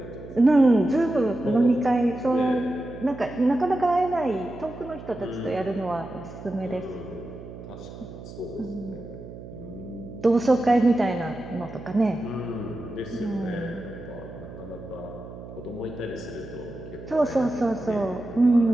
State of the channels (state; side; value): noise; right; hum, 14 dB below the sound